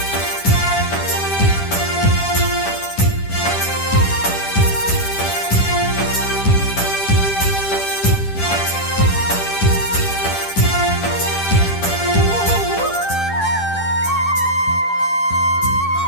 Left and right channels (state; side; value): late; right; 10 ms